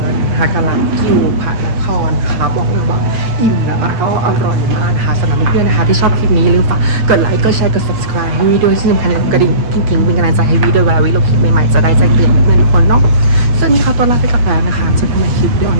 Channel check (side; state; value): left; late; 8.5 ms